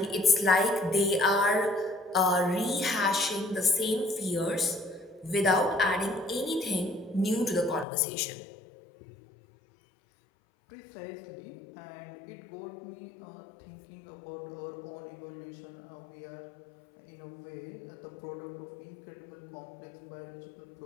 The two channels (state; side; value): drops out; right; at 7.9 s